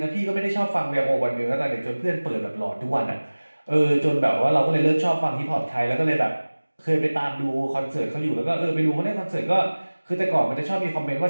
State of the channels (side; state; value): both; inverted; correlation -1.00